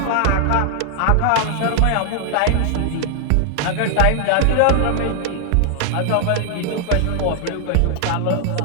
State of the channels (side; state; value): both; different; correlation 0.00